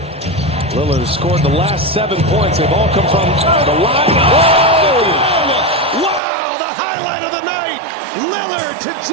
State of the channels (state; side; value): drops out; left; at 6.2 s